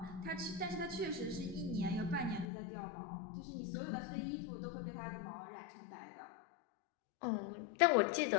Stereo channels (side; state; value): right; drops out; at 2.5 s